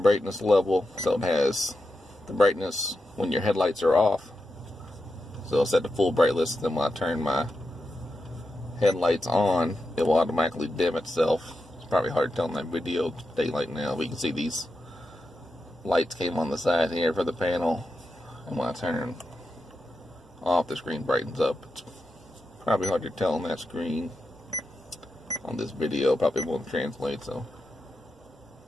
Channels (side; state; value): both; normal; correlation 0.88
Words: level, so it has the brightness when your headlights are off. So I'll set the full brightness, then when I turn my headlights on, it will automatically dim itself. It's probably hard to tell in that video, daylight now, but you can see these lights came on the side here for the panel, and when I turn off, the screen brightens up. It's probably hard to tell on that screen. On this video, probably won't translate, so